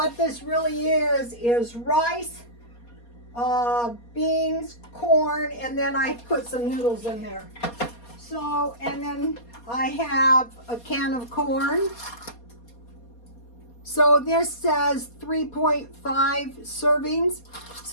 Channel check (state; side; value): late; right; 4.2 ms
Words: this really is rice, beans, corn, and then I put some noodles in there. So, and then I have a can of corn. So this says 3.5 servings.